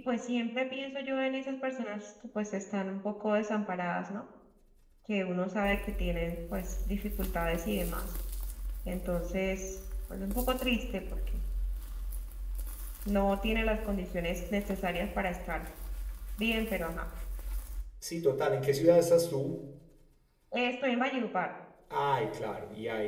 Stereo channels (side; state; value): both; identical; correlation 1.00